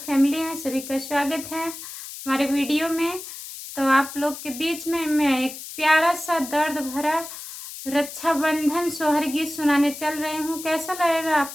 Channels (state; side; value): noise; left; hiss, 11 dB below the sound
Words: फैमिली हैं सभी का स्वागत है हमारे वीडियो में। तो आप लोग के बीच में मैं एक प्यारा सा दर्द भरा रक्षाबंधन सोहर गीत सुनाने चल रही हूँ। कैसा लगेगा आप